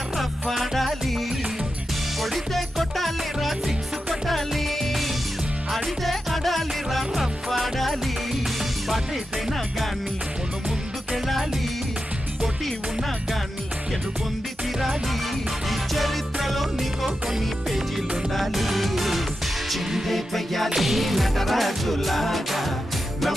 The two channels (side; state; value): both; normal; correlation 0.90